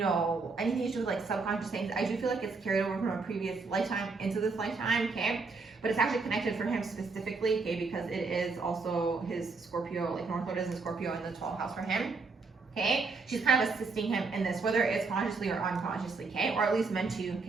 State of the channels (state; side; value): quieter; left; 4.2 dB